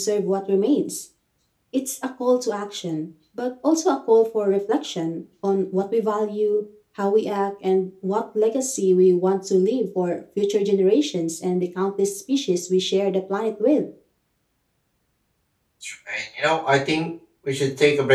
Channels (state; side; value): identical; both; correlation 1.00